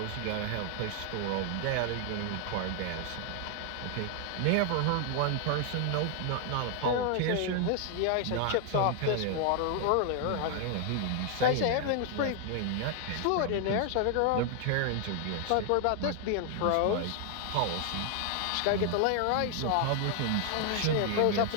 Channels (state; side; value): different; both; correlation 0.00